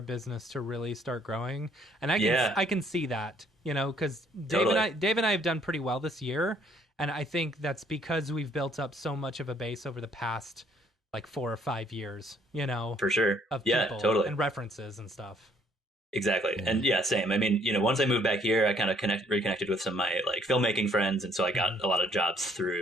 business to really start growing, and I can see that, you know, because Dave and I have done pretty well this year, and I think that's because we've built up so much of a base over the past like 4 or 5 years, you know, for sure, of people totally, and references and stuff. Exactly. And same. I mean, you know, once I moved back here, I kind of reconnected with some of my like filmmaking friends, and so I got a lot of jobs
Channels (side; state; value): both; normal; correlation 0.63